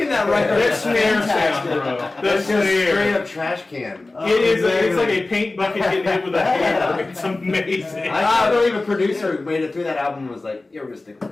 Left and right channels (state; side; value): quieter; right; 3.2 dB